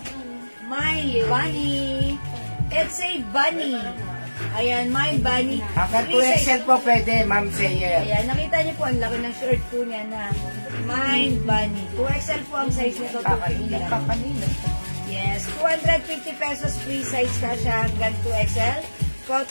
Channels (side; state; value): both; inverted; correlation -1.00